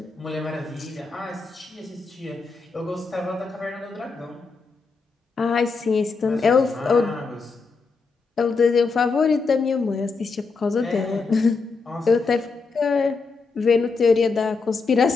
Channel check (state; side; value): quieter; right; 4.4 dB